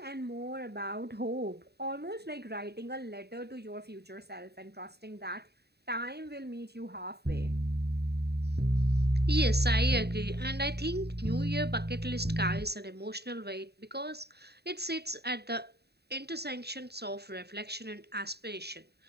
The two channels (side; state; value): left; late; 0.48 ms